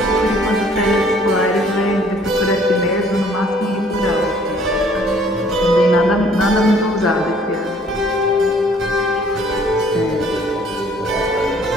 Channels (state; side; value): normal; both; correlation 0.59